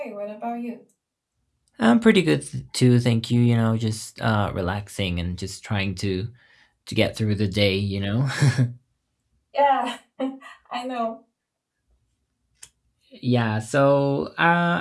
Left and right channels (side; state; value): both; identical; correlation 1.00